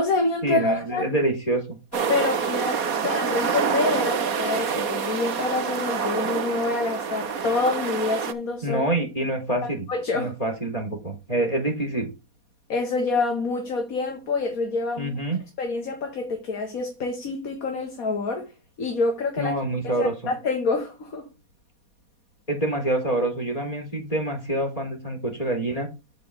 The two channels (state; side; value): late; right; 4.2 ms